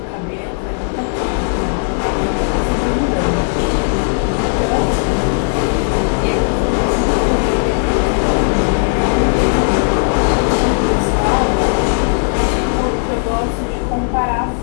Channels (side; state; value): right; silent; 65 dB below the other